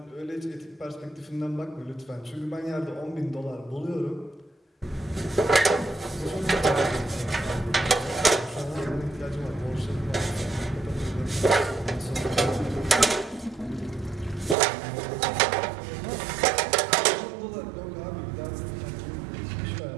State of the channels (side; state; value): left; drops out; at 14.6 s